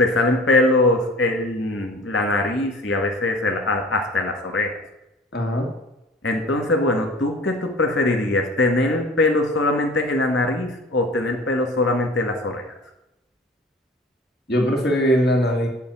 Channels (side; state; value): both; normal; correlation 0.45